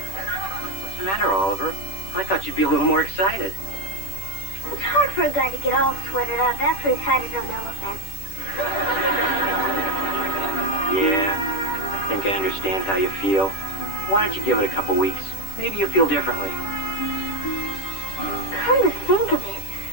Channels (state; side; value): late; right; 10 ms